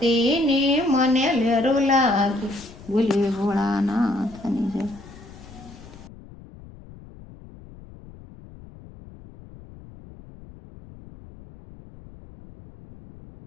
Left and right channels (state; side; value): noise; left; rumble, 19 dB below the sound